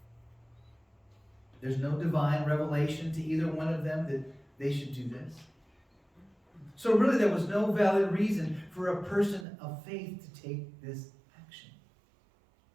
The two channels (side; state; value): left; drops out; at 9.5 s